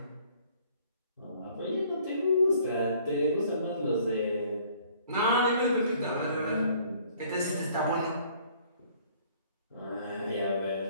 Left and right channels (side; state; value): both; inverted; correlation -0.58